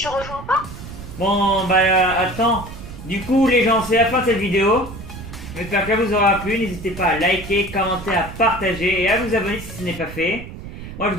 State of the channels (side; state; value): right; noise; rumble, 12 dB below the sound